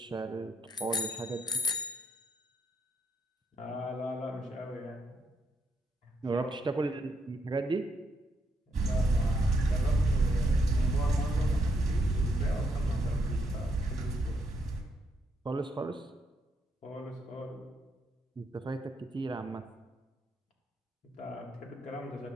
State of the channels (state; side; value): normal; both; correlation 0.76